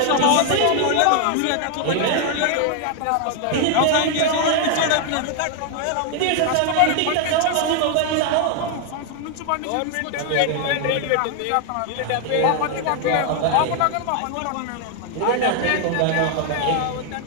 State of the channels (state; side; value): different; both; correlation 0.00